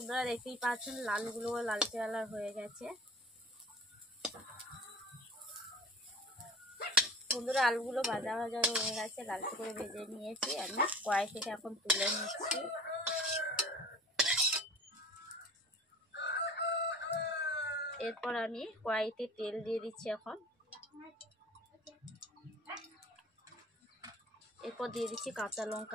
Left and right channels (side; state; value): both; normal; correlation 0.41